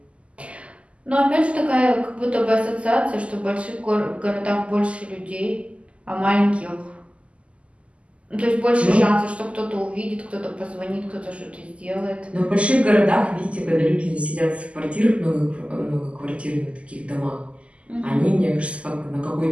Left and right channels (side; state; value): left; late; 0.059 ms